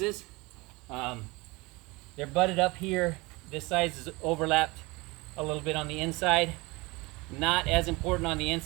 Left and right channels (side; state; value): left; quieter; 24.1 dB